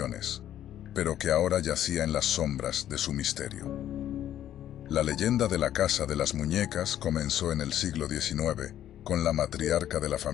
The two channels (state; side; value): quieter; right; 11.5 dB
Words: pero que ahora yacía en las sombras de su misterio. La leyenda de la Casa de las Muñecas comenzó en el siglo XIX, con la matriarca de la